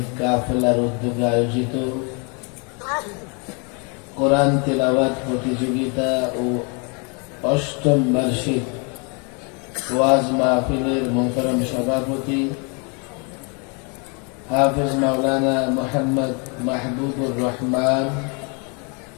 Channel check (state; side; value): quieter; right; 34.2 dB